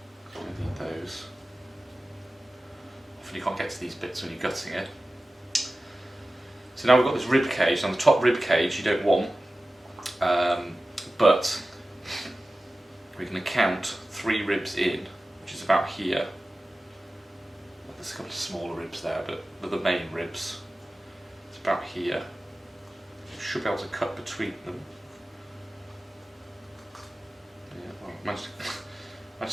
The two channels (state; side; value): normal; both; correlation 0.95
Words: don't need those. Often you can't get to these bits when you're gutting it. So now we've got this rib cage. Now the top rib cage you don't want, but we're going to count 3 ribs in, which is about here. There's a couple of smaller ribs there, but they're the main ribs. It's about here. You should be able to cut between them. Yeah, well, managed